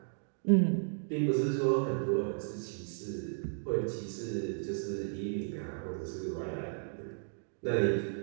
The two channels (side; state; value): left; silent; digital silence